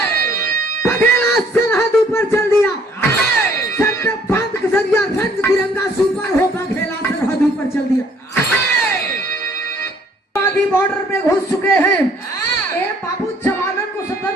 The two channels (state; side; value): normal; both; correlation 0.61